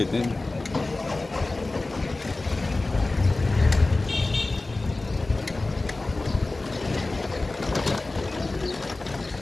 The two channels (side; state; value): right; quieter; 3.1 dB